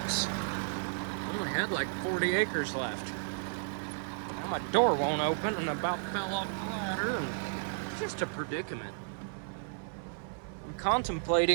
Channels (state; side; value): silent; left; 56 dB below the other